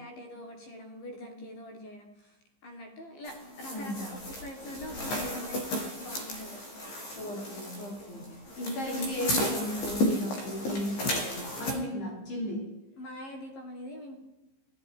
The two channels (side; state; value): right; late; 15 ms